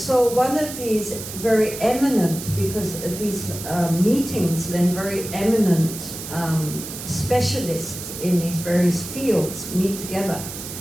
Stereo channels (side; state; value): right; noise; hiss, 10 dB below the sound